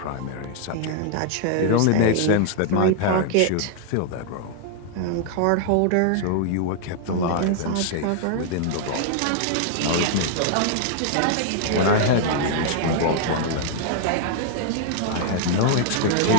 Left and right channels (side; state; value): both; different; correlation 0.00